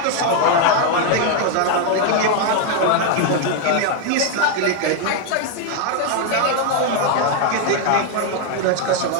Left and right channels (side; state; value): both; different; correlation 0.01